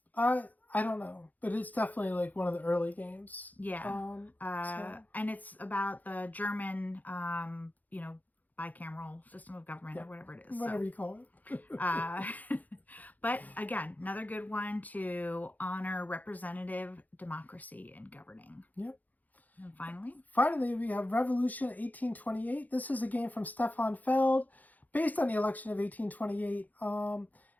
I don't know, but it's definitely like one of the early games. Yeah. And it's about the German, bicameral system of government or whatever it is. Whatever you call it. But again, another good one to honor representative democracy in governing. Yep. And finally? Finally, we have Revolution 1828. This is a game from Stefan Feld, based on the election of 1828.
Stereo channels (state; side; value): late; right; 0.081 ms